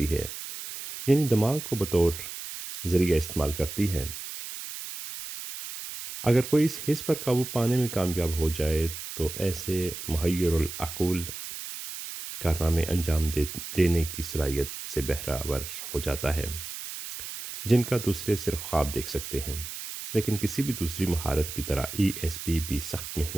है, यानी दिमाग को बतौर ज़रिया इस्तेमाल करती है। अगर कोई इस हिस्स पर काबू पाने में कामयाब हो जाए तो ऐसे मुहय्यरुल अक़ूल कारनामे देने की सलाहियत से बहरावर हो जाता है, जिनका दूसरे सिर्फ ख्वाब देख सकते हैं। लेकिन किसी भी दूसरी महारत की तरह ईएसपी भी सख्त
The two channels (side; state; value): right; noise; hiss, 9 dB below the sound